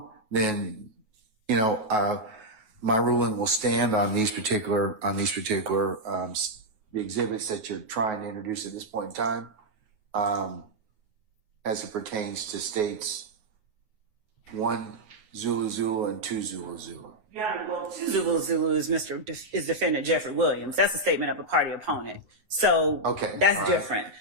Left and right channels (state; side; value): late; left; 9.4 ms